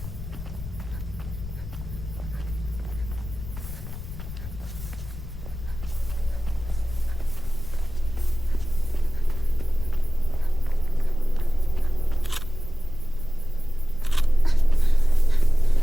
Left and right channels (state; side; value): noise; left; rumble, 10 dB below the sound